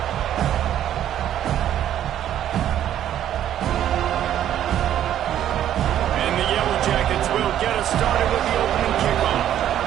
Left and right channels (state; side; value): quieter; left; 11.1 dB